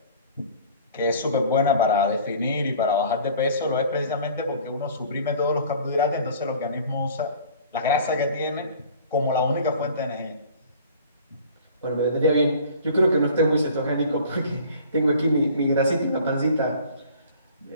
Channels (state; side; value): inverted; both; correlation -0.48